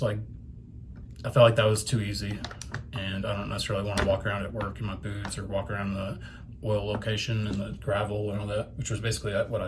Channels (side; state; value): both; identical; correlation 1.00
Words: like, I felt like that was too easy, and I don't necessarily want to walk around at work in my boots or walk around the oil location and the gravel and all that, which was basically what